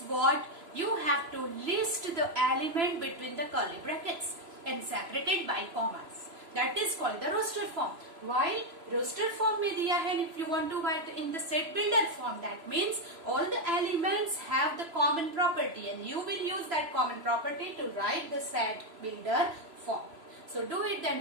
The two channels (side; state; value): left; late; 3.0 ms